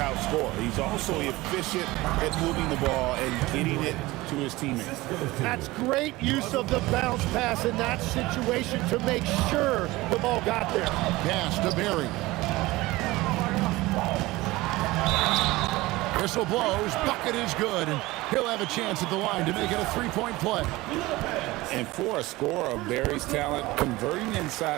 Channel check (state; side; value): quieter; left; 19.8 dB